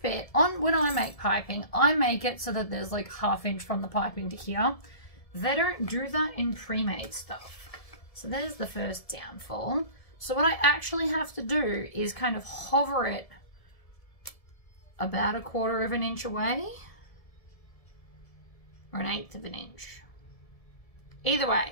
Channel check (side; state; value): right; late; 1.7 ms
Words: when I make piping, I make it so that there's like 1/2 inch from the piping to here. They don't do that in pre-made stuff. So there's the first downfall. So what I actually have to do is kind of hover it about 1/4 of an inch away, or 1/8 of an inch. Either